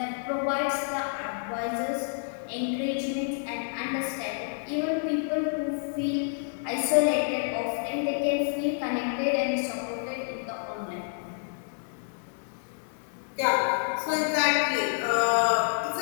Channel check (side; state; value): right; silent; 59 dB below the other